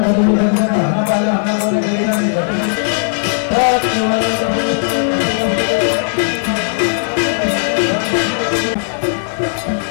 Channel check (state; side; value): silent; right; digital silence